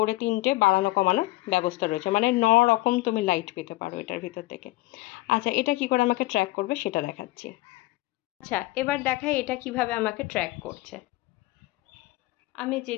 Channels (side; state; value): right; quieter; 19.6 dB